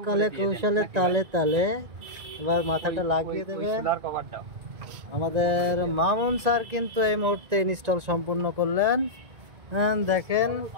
কলে কৌশলে তালে তালে। এবার মাথাটা লাগিয়ে দেবে। আমাদের মামুন স্যার কিন্তু এই মুহূর্তে ইনস্টল সম্পূর্ণ করলেন। দেখেন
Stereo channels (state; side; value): late; left; 1.9 ms